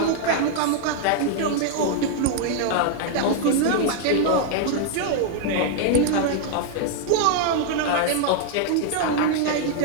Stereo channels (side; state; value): both; different; correlation -0.01